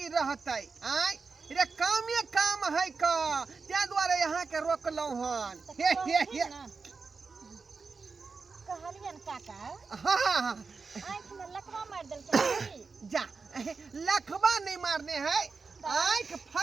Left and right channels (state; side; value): quieter; left; 4.6 dB